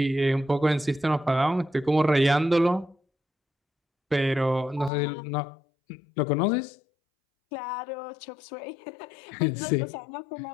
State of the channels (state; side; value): drops out; right; at 4.9 s